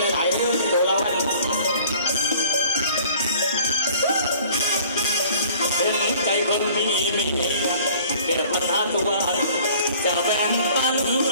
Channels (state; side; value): inverted; both; correlation -0.51